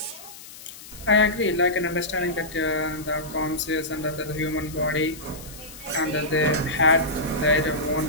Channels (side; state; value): left; noise; hiss, 16 dB below the sound